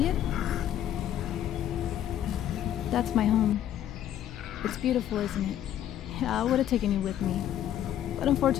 it? That's my home. It's beautiful, isn't it? Yeah, I would have taken you with me. But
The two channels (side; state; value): right; quieter; 11.1 dB